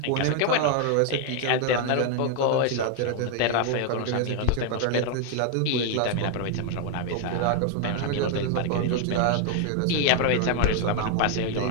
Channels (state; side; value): different; both; correlation 0.00